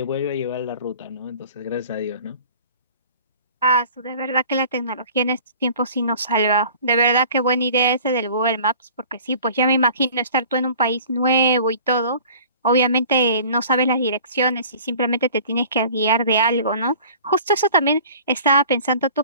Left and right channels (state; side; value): inverted; both; correlation -0.46